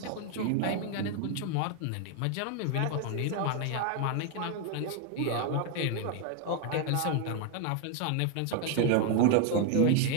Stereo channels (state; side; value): different; both; correlation 0.01